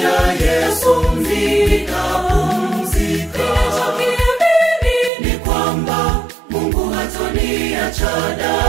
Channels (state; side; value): drops out; left; at 5.1 s